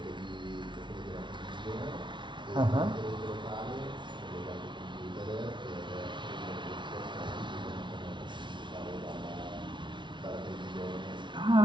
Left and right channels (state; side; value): late; left; 0.23 ms